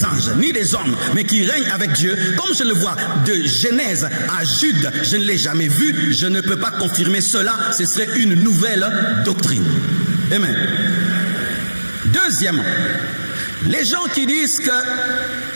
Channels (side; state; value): both; inverted; correlation -1.00